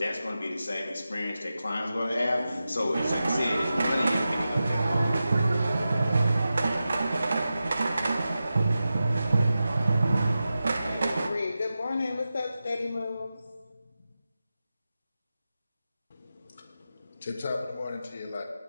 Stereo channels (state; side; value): inverted; both; correlation -0.93